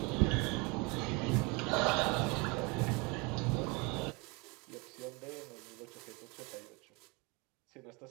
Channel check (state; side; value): quieter; left; 28.1 dB